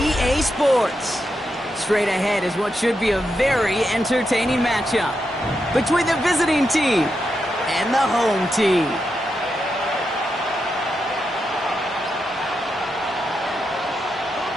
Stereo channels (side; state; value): both; normal; correlation 0.85